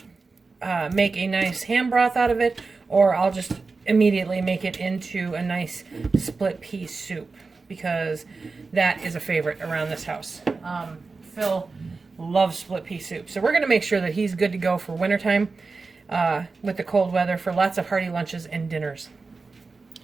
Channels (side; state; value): left; quieter; 4.1 dB